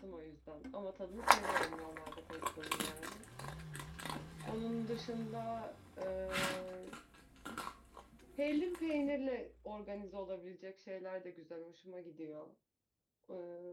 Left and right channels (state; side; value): identical; both; correlation 1.00